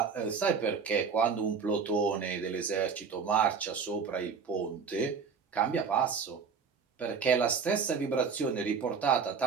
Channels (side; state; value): left; quieter; 5.9 dB